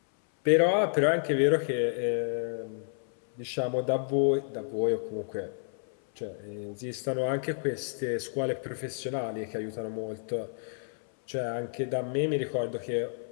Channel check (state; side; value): silent; right; 58 dB below the other